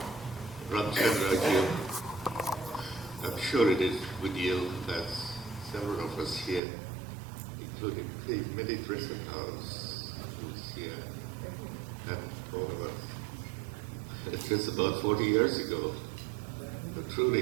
Ramachandra, I'm sure it is with you, as several of us here, including the Midi Dressing House, who's here, and all of us. It's just about 40 years ago. But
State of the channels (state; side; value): drops out; left; at 6.6 s